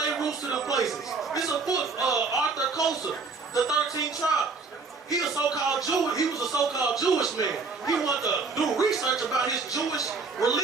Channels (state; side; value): quieter; left; 4.4 dB